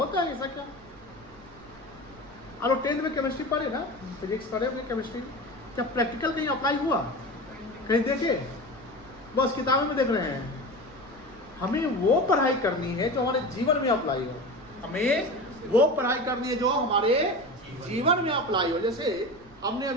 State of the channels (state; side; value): noise; right; rumble, 23 dB below the sound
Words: है ऐसा क्या? और 10th में केमिस्ट्री पढ़े ना, फिजिक्स पढ़े अपने केमिस्ट्री, क्या प्रैक्टिकल कहीं अप्लाई हुआ? कहीं देखे? बस किताबों में देख रहे हैं। हमें वो पढ़ाई करनी है जो हमारे जीवन में अप्लाई हो। हमें वो पढ़ाई करनी है जो हमारे जीवन में अप्लाई हो। जैसे हमने